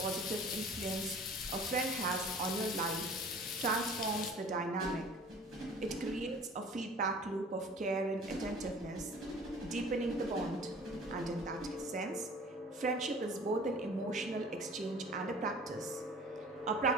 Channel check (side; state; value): both; normal; correlation 0.46